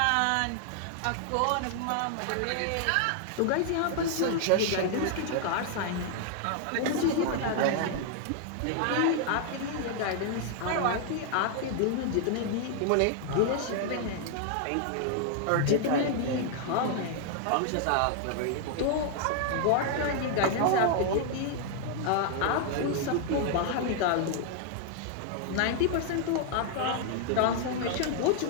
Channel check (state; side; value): different; both; correlation 0.00